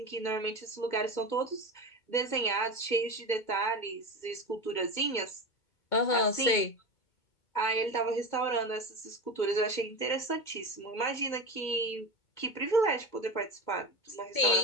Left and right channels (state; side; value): late; right; 2.2 ms